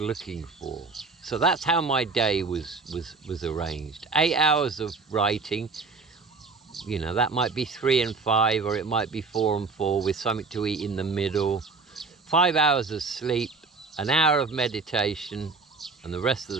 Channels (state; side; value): quieter; left; 4.3 dB